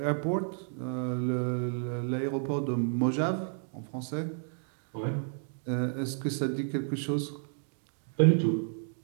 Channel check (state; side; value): silent; left; 57 dB below the other